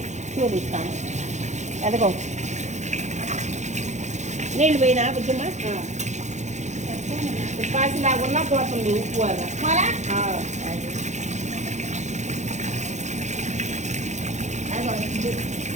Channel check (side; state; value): left; late; 0.34 ms